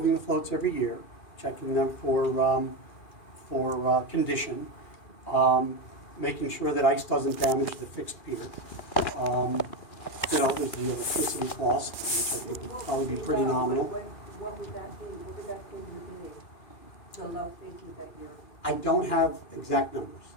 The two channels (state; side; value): late; right; 2.4 ms